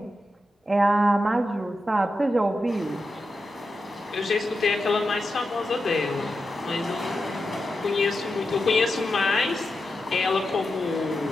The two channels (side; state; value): both; normal; correlation 0.89